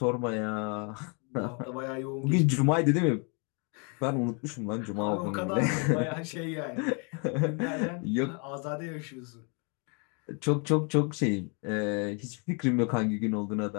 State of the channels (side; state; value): right; quieter; 35.8 dB